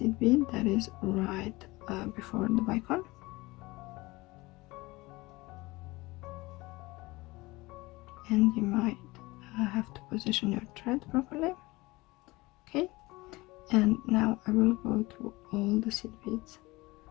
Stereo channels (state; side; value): quieter; right; 21.6 dB